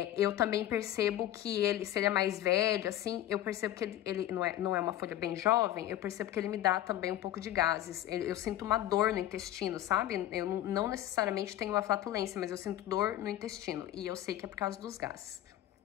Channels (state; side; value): quieter; right; 13.0 dB